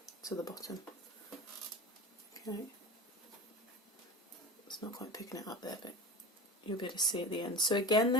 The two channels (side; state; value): both; normal; correlation 0.32